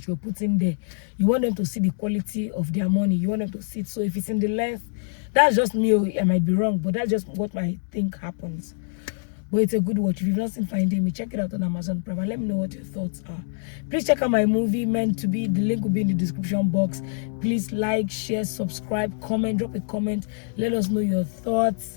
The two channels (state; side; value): silent; right; digital silence